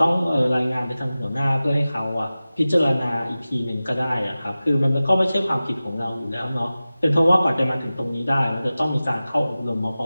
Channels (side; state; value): both; inverted; correlation -0.96